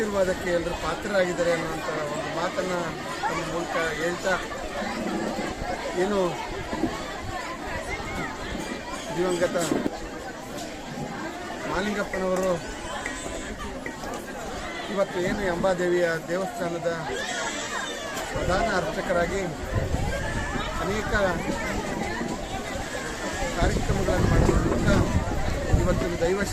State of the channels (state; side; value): identical; both; correlation 1.00